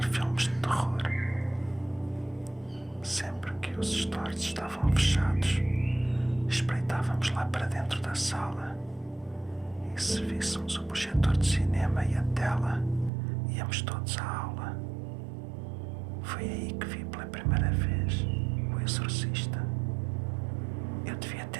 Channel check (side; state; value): left; drops out; at 13.1 s